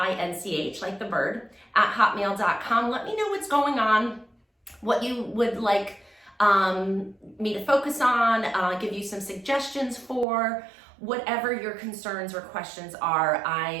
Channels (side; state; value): left; drops out; at 10.2 s